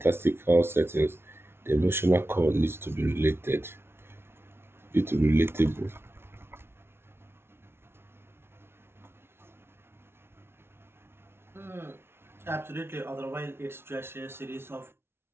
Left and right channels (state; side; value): late; left; 0.12 ms